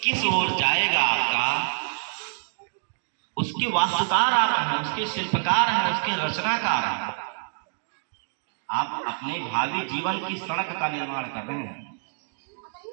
किस ओर जाएगा आपका, उसके वास्तुकार आप हैं, उसके शिल्पकार हैं, उसके रचनाकार हैं। आप अपने भावी जीवन की सड़क का निर्माण कर रहे हैं।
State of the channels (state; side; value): silent; left; digital silence